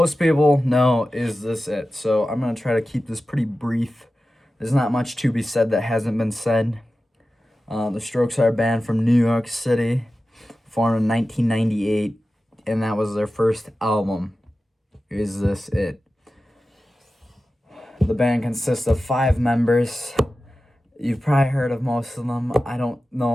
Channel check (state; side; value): normal; both; correlation 0.94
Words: people know Is This It? So I'm going to try to keep this pretty brief. There's not much to be said that hasn't been said. The Strokes are a band from New York City, formed in 1998, and that was their first album, Is This It? The band consists of 5 members. You've probably heard of most of them. I don't